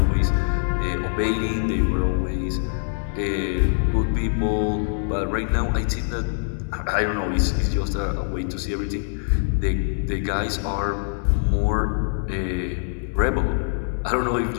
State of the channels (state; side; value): silent; right; digital silence